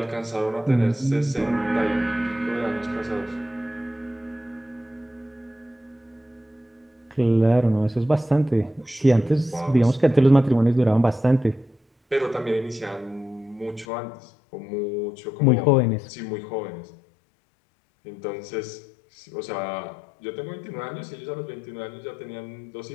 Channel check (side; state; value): right; drops out; at 13.9 s